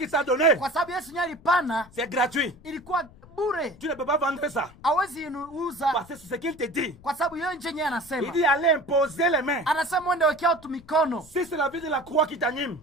t'a donné, Kwa sababu Yesu nyali pana c'est gratuit. ilikuwa bure. Tu ne peux pas vendre ça. Hawezi inuuza Parce que c'est ce qu'il te dit. kwa sababu yeye nje yeye Il anasema. dit allez imposer les mains. Anasema uende wekea watu mikono. Si c'est la vie de la croix qui t'anime,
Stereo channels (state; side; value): noise; left; rumble, 23 dB below the sound